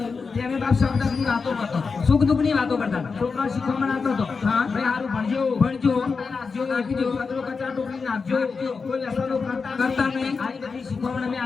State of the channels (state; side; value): quieter; right; 4.9 dB